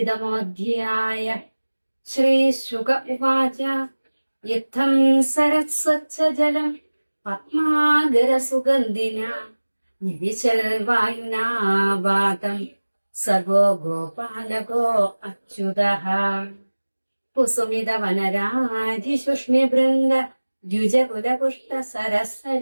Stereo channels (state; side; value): inverted; both; correlation -1.00